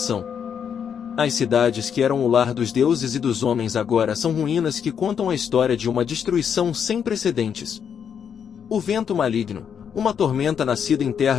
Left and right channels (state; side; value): quieter; right; 7.7 dB